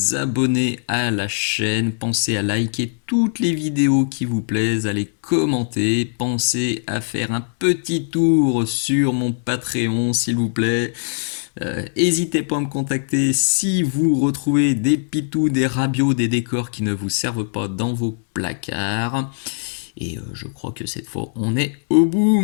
abonner à la chaîne, pensez à liker toutes les vidéos qui vous plaisent, à les commenter, pensez à faire un petit tour sur mon Patreon s'il vous plaît. N'hésitez pas à me contacter si vous retrouvez des pitous, des rabios, des décors qui ne vous servent pas dans vos placards. Et je crois que cette fois, on est au bout.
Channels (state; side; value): silent; right; digital silence